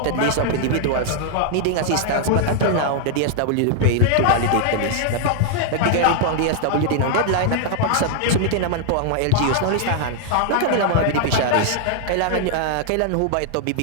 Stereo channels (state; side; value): different; both; correlation 0.00